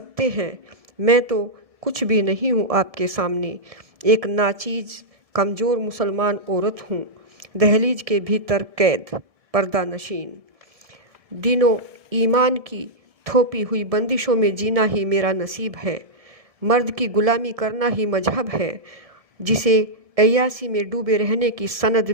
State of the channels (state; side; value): late; left; 1.7 ms